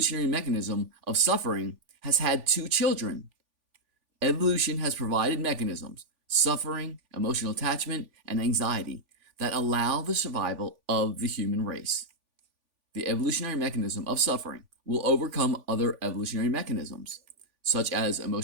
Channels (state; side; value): late; left; 3.5 ms